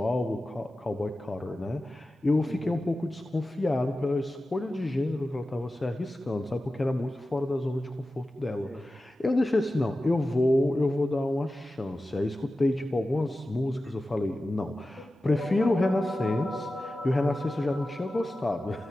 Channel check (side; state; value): both; normal; correlation 0.94